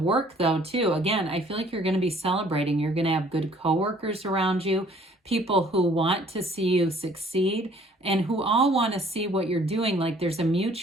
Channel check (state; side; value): normal; both; correlation 0.57